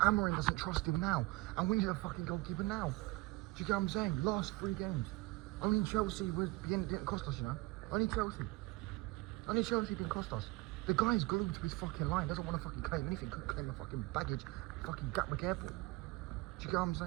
doesn't trust him now, and we need a fucking goalkeeper now. Do you get what I'm saying? Last 3 games. Only Chelsea didn't cost us, you know? Only Chelsea. Only Chelsea didn't cost us. The guy's glued to his fucking line, doesn't want to fucking claim anything, couldn't claim a fucking baggage, fucking Gatwick Airport. Do you get what I'm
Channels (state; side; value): quieter; left; 21.2 dB